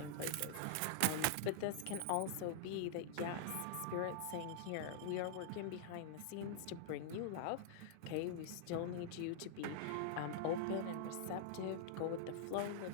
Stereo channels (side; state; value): both; different; correlation -0.02